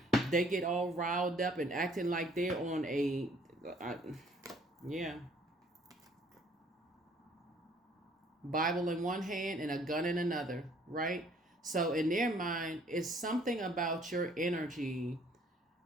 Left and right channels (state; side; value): normal; both; correlation 0.60